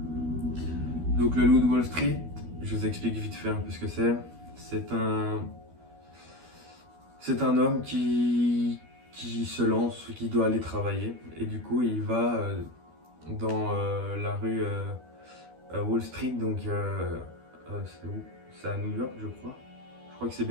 Donc le Loup de Wall Street, je vous explique vite fait un peu ce que c'est. C'est un homme qui se lance, qui doit aller travailler, et du coup il va dans la rue Wall Street, donc c'est où? C'est à New York, je crois. Je crois que c'est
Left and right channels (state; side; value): late; left; 12 ms